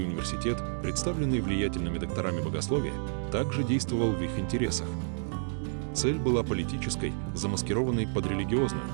университет, представленный влиятельными докторами богословия, также действовал в их интересах. Цель была политической, замаскированной под религиозную –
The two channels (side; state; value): left; silent; digital silence